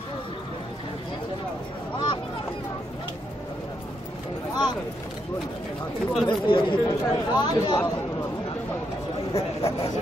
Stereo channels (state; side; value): normal; both; correlation 0.79